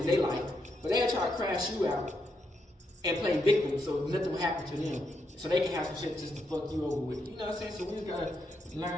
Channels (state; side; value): normal; both; correlation 0.80